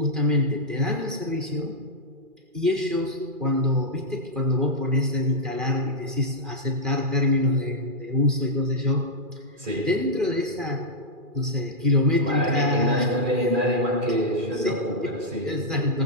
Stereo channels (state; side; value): late; left; 2.4 ms